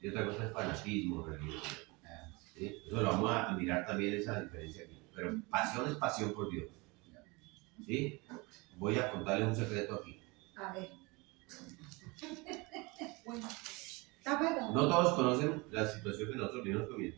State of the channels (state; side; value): quieter; left; 25.9 dB